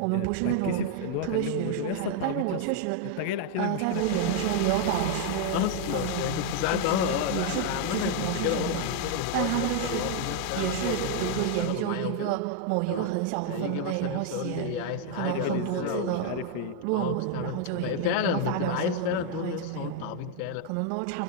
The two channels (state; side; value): different; both; correlation 0.00